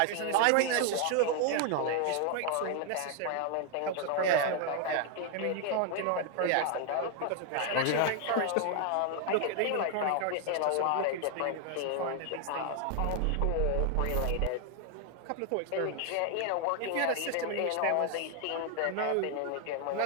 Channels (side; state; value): both; different; correlation 0.00